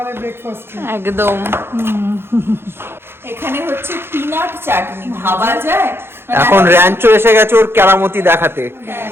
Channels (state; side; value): late; left; 0.11 ms